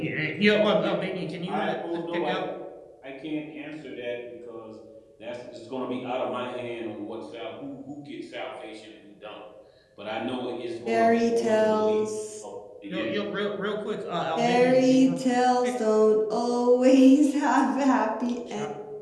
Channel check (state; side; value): identical; both; correlation 1.00